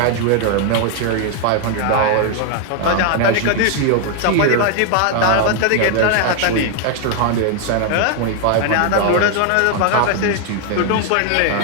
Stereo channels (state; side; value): different; both; correlation 0.00